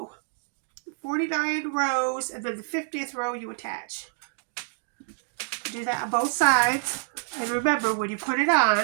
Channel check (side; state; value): left; silent; 60 dB below the other